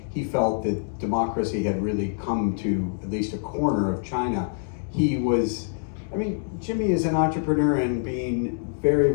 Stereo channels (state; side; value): silent; right; digital silence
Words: he felt that democracy had really come to at least a corner of China. Jimmy is an entrepreneur and being very,